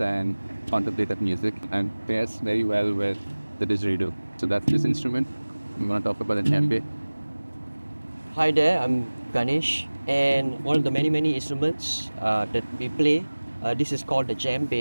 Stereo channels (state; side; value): inverted; both; correlation -1.00